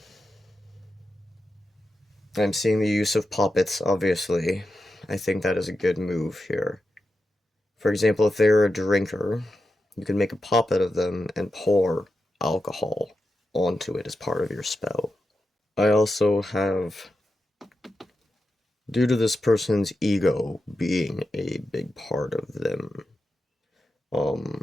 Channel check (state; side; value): normal; both; correlation 0.89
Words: I'm seeing the use of puppets, obviously. I think that is a good move here. For example, if they're a drinker, you can make a puppet of them and pour alcohol onto it as part of your spell. I also have, due to this person's ego being a big part of them,